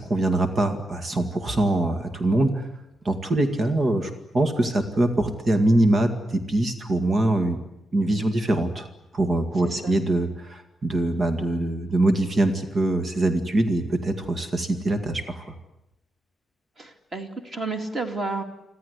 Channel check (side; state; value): both; normal; correlation 0.86